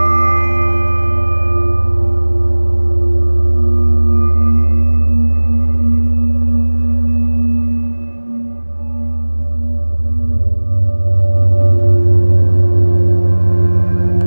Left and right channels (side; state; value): both; inverted; correlation -1.00